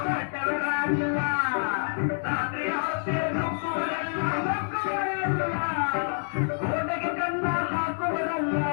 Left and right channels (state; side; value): silent; right; digital silence